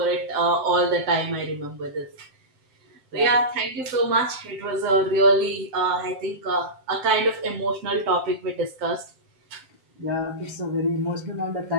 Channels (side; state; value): left; late; 7.8 ms